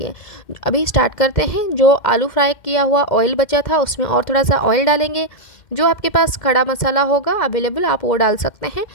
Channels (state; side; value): late; right; 2.1 ms